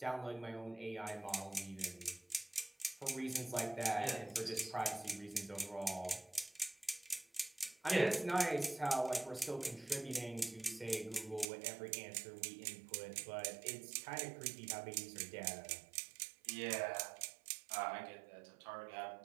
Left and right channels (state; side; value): drops out; left; at 11.5 s